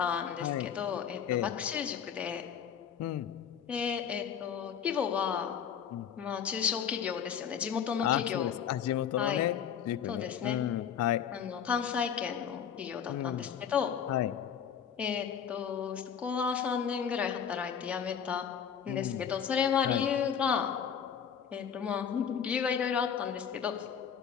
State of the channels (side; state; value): right; quieter; 7.9 dB